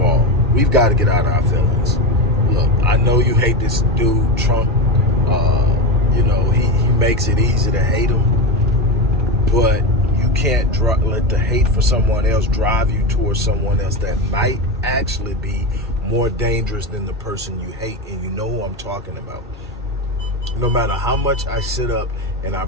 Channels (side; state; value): both; normal; correlation 0.17